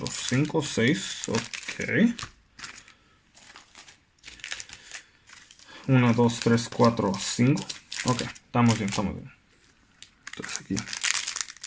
5, 6. Ok. 1, 2, 3, 4, 5. Ok, estamos bien, estamos bien. Entonces aquí.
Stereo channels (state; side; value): identical; both; correlation 1.00